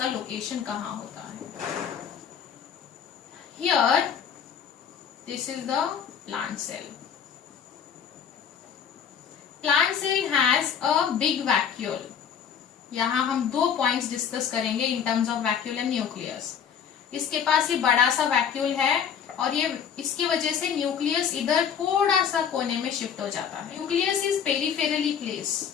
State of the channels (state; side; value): quieter; right; 7.8 dB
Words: लोकेशन कहाँ होता है। Here this is the plant cell. Plant cell has a big vacuole. यहां हम 2 पॉइंट्स डिस्कस करेंगे in terms of vacuole and nucleus. इसके पास ये बड़ा सा वैक्यूल है और ये इसकी वजह से न्यूक्लियस इधर थोड़ा सा कोने में शिफ्ट हो जाता है। Nucleus is peripherally place.